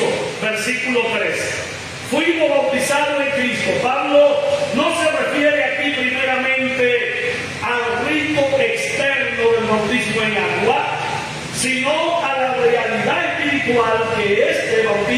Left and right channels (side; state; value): both; identical; correlation 1.00